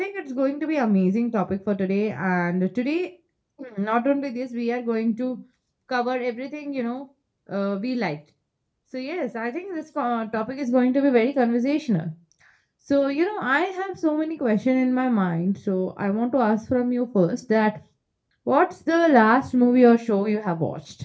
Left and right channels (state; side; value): identical; both; correlation 1.00